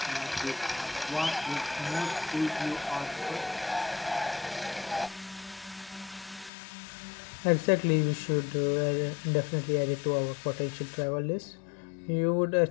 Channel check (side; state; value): right; drops out; at 6.5 s